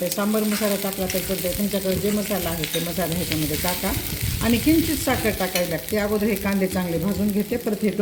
सांबार मसाला टाकला तर चालतंय. तुमच्याकडे जे मसाला आहे ते मसाला ह्याच्यामध्ये टाका. आणि किंचित साखर टाकावी लागते. अगोदर हे कांदे चांगले भाजून घेते, परत हे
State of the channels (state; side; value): identical; both; correlation 1.00